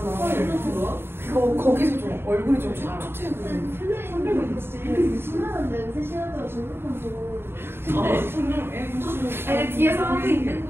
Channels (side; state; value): left; late; 0.11 ms